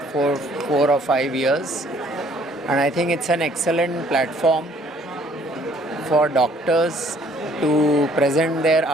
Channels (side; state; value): both; normal; correlation 0.60